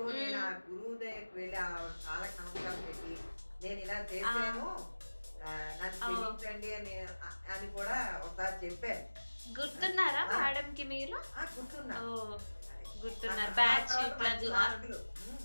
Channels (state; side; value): inverted; both; correlation -1.00